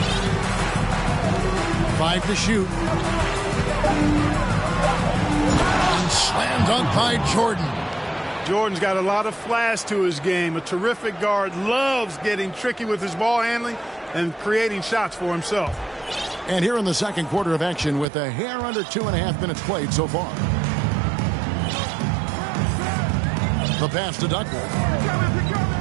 Five to shoot. And slam dunk by Jordan. Jordan's got a lot of flash to his game. A terrific guard, loves getting tricky with his ball handling and creating shots for himself. And here in the second quarter of action with a hair under 2.5 minutes played so far. The pass to Duckworth.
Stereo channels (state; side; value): drops out; left; at 18.1 s